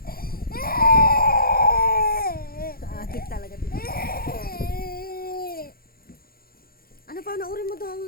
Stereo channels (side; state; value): right; late; 0.43 ms